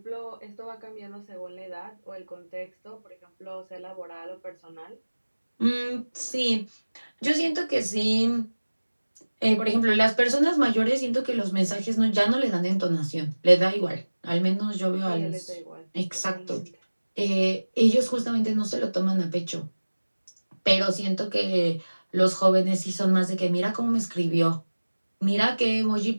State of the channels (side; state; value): both; inverted; correlation -1.00